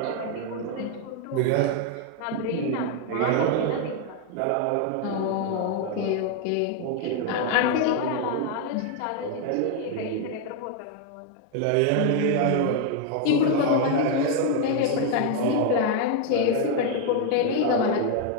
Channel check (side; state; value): both; different; correlation 0.01